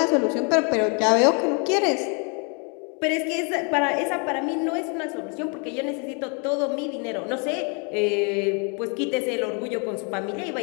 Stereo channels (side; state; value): right; quieter; 35.8 dB